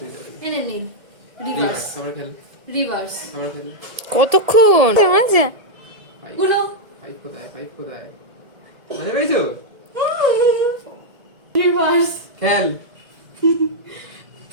দিতে হবে। এনে নীল রিভার্স রিভার্স আবার খেল, রিভার্স। আবার খেল। কতক্ষণ মজা? গুলো 5 কোথায়, 5 কোথায়? মজা পেয়েছো? রিভার্স খেল।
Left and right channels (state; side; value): late; left; 1.8 ms